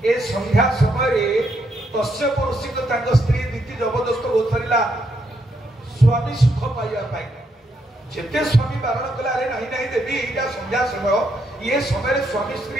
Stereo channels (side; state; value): both; normal; correlation 0.77